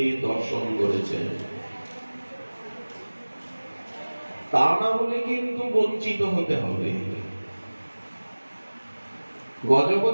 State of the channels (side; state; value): both; inverted; correlation -1.00